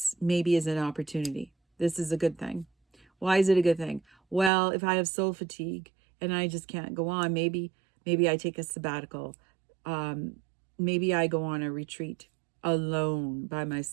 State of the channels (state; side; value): drops out; left; at 4.5 s